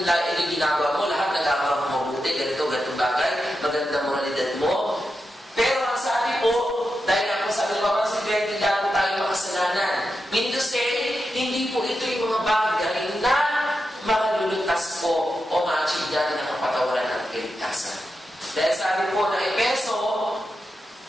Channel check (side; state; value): both; normal; correlation 0.88